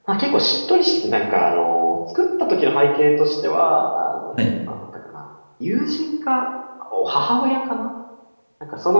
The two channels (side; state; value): both; inverted; correlation -1.00